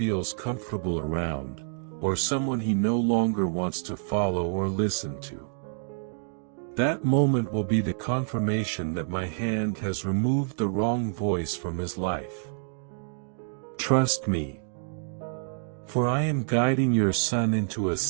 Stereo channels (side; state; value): left; silent; digital silence